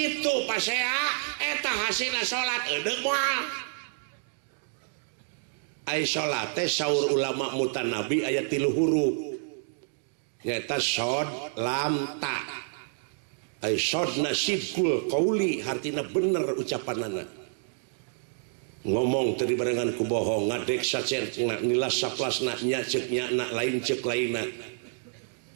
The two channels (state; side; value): silent; left; digital silence